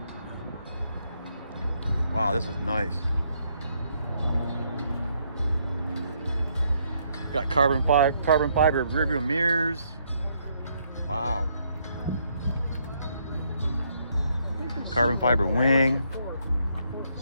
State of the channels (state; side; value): inverted; both; correlation -0.72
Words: Wow, this is nice. Got carbon fiber rear view mirrors. Wow. Carbon fiber wing.